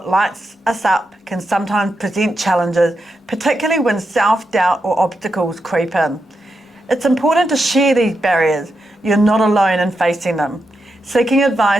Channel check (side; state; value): both; normal; correlation 0.86